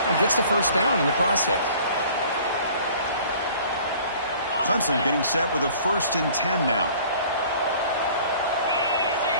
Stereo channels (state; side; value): inverted; both; correlation -0.50